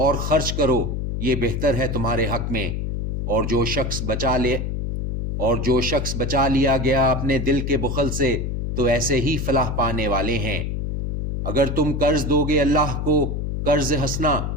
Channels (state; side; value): noise; left; hum, 2 dB below the sound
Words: خرچ کرو، یہ بہتر ہے تمہارے حق میں۔ اور جو شخص بچا لیا گیا اپنے دل کے بخل سے، تو ایسے ہی فلاح پانے والے ہیں۔ اگر تم قرض دو گے اللہ کو قرض حسنا،